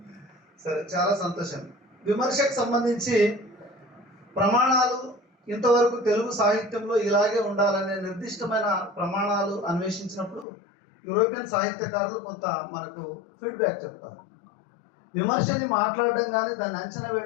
సరే, చాలా సంతోషం. విమర్శకు సంబంధించి ప్రమాణాలు ఇంతవరకు తెలుగు సాహిత్యంలో ఇలాగే ఉండాలనే నిర్దిష్టమైన ప్రమాణాలు అన్వేషించినప్పుడు యూరోపియన్ సాహిత్యకారులు కొంత మనకు ఫీడ్బ్యాక్ చెప్తారు. విమర్శని మాట్లాడడం కానీ దాన్ని అంచనా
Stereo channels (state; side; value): drops out; right; at 10.5 s